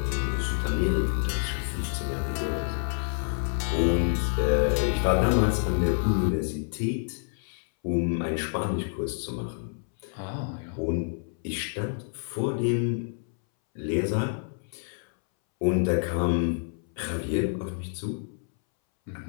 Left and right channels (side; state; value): right; silent; 59 dB below the other